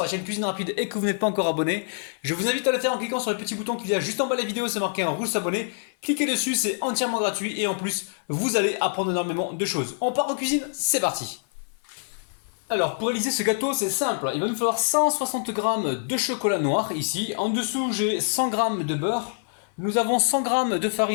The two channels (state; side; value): silent; right; 55 dB below the other